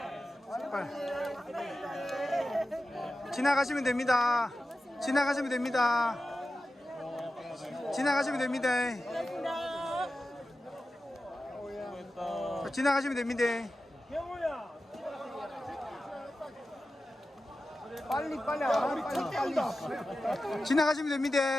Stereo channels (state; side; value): normal; both; correlation 0.93